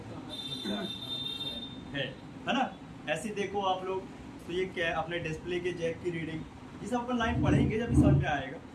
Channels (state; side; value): identical; both; correlation 1.00